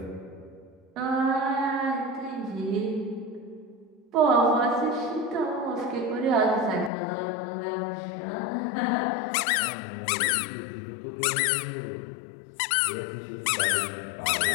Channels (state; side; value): drops out; right; at 6.9 s